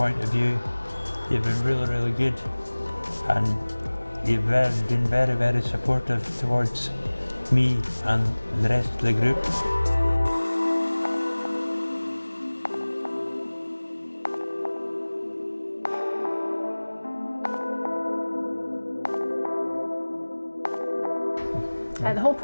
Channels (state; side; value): inverted; both; correlation -1.00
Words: of view, you've been really good, and you've been very supportive towards me and the rest of the group. The whole